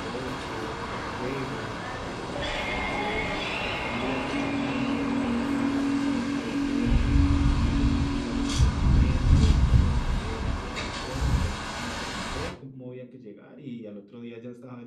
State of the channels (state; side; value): identical; both; correlation 1.00